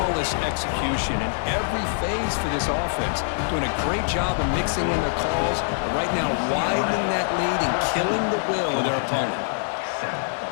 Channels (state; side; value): silent; right; digital silence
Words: execution in every phase for this offense. Doing a great job of mixing in their calls, but right now widening that lead and killing the will of their opponent.